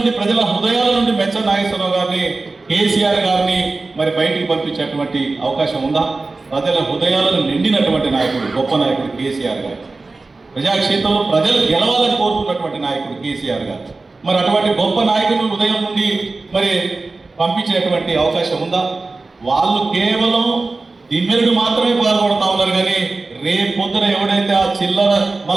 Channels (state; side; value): quieter; left; 3.6 dB